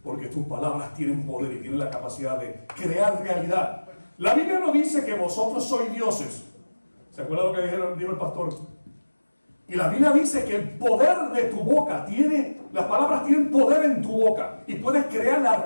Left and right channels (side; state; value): both; inverted; correlation -1.00